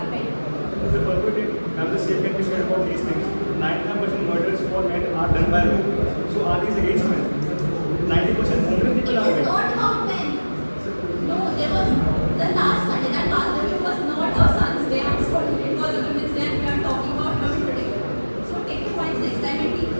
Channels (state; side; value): inverted; both; correlation -1.00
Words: men. The perpetrator, and the same can be said about these things. 99% murders for men are done by women. So are these against men? 90% homeless It people are is women. not about men. No, there was the last Sunday, that last day was not a son's day. I'm sorry, it was a women's day, and we are talking about women today. So take your points next time, and